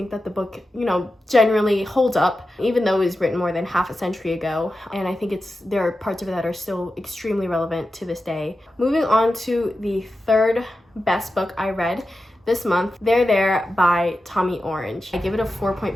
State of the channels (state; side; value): normal; both; correlation 0.92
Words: that the book, you know, generally holds up, even though it was written more than half a century ago. And I think there are parts of it that are still extremely relevant to this day. Moving on to the third best book I read this month, There There by Tommy Orange. I give it a